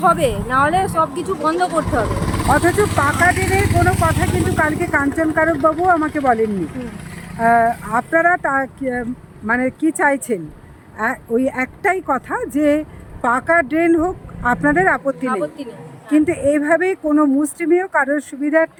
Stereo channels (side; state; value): both; identical; correlation 1.00